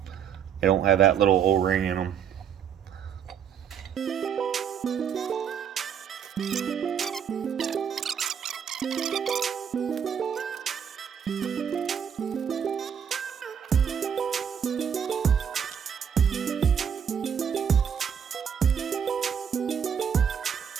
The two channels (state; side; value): quieter; left; 7.9 dB